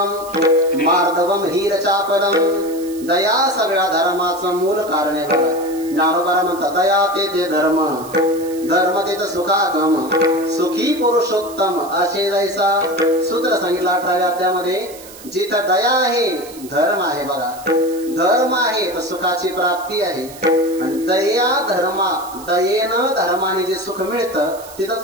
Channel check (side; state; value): right; noise; hiss, 18 dB below the sound